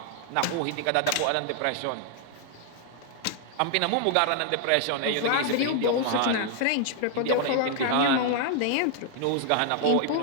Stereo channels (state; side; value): different; both; correlation 0.00